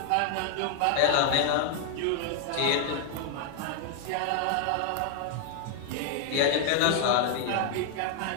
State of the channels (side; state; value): both; different; correlation 0.00